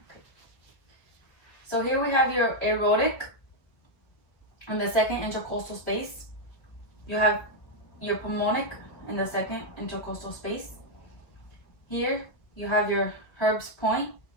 So here we have your aortic in the second intercostal space. You have your pulmonic in the second intercostal space. Here you have your Herb's point,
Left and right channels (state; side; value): late; right; 1.7 ms